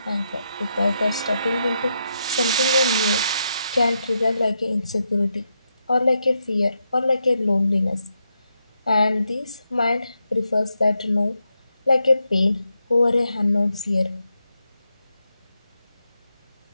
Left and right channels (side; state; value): both; inverted; correlation -0.83